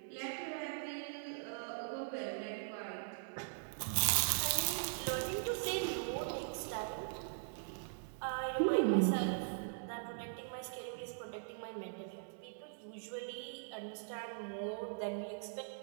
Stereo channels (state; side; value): silent; left; digital silence